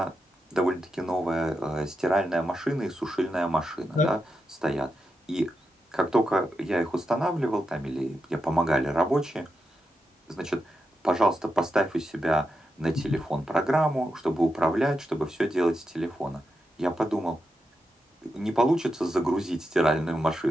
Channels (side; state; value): both; normal; correlation 0.87